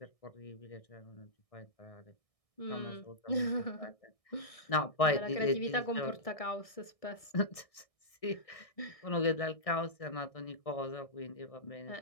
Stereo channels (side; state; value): right; late; 1.6 ms